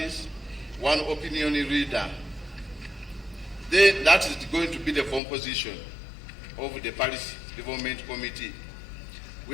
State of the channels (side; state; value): right; drops out; at 5.2 s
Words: one opinion leader. That is going to be the composition of the parish development committee.